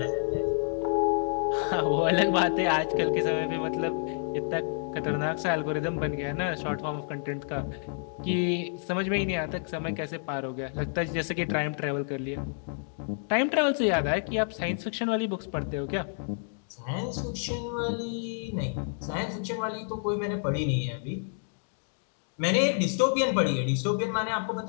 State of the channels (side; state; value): right; silent; digital silence